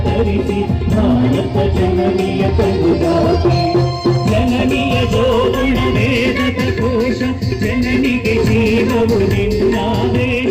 ತರಿಸಿ ಭಾರತ ಜನನಿಯ ಕರುದಾತೆ ಜನನಿಯ ಜೋಗುಣ ವೇದದ ಕೋಶ ಜನನಿಗೆ ಜೀವವು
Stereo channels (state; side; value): identical; both; correlation 1.00